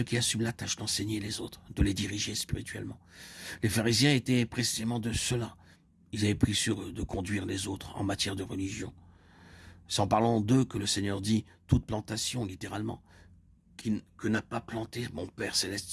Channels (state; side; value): identical; both; correlation 1.00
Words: qui assument la tâche d'enseigner les autres, de les diriger spirituellement. Les pharisiens étaient précisément de ceux-là. Ils avaient pris sur eux de conduire les autres en matière de religion. C'est en parlant d'eux que le Seigneur dit « toute plantation », littéralement, que n'a pas planté mon Père Céleste